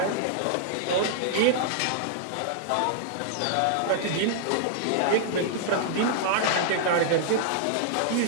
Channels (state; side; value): different; both; correlation -0.01